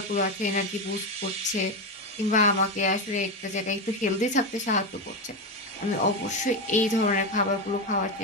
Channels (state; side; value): normal; both; correlation 0.13